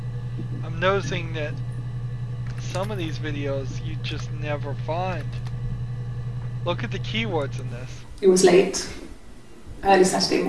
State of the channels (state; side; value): identical; both; correlation 1.00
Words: I'm noticing that some of these videos you just never find. Look at the keywords in this. It was late. Early Saturday